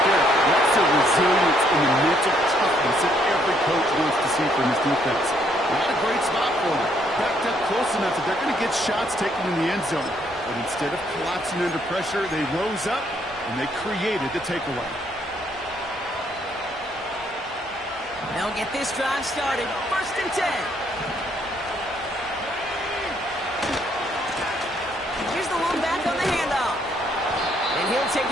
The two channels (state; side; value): normal; both; correlation 0.69